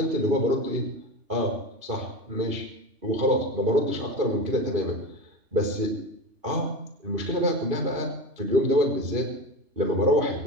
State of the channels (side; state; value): left; late; 2.5 ms